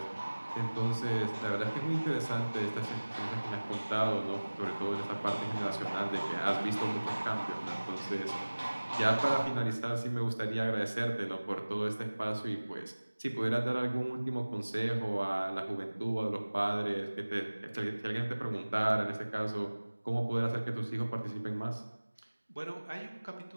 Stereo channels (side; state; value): both; inverted; correlation -1.00